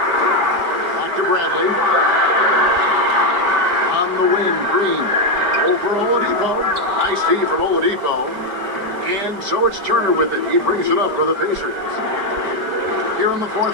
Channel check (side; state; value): left; late; 5.1 ms